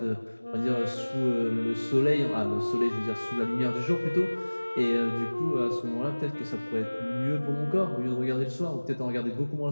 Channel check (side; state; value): both; inverted; correlation -1.00